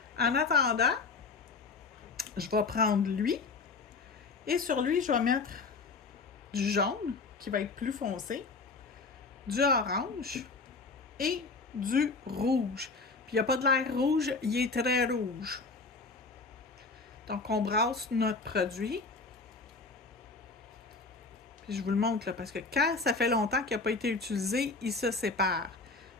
En attendant, je vais prendre lui. Et sur lui, je vais mettre du jaune, qui va être plus foncé, du orange et du rouge. Puis il n'y a pas de l'air rouge, il est très rouge. Donc on brasse notre produit. Puis je vous le montre là, parce que quand ça fait longtemps qu'il n'a pas été utilisé, il se sépare.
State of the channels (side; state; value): right; quieter; 4.1 dB